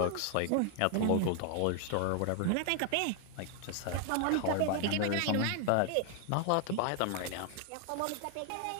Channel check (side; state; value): both; different; correlation 0.00